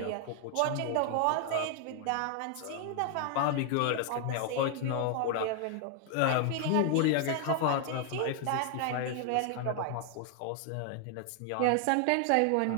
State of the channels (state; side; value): different; both; correlation 0.00